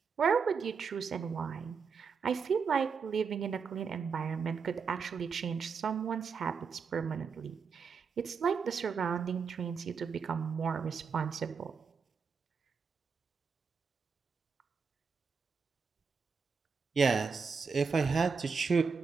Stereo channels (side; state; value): left; quieter; 5.6 dB